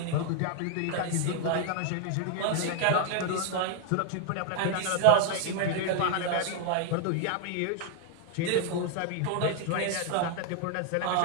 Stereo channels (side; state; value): both; different; correlation 0.00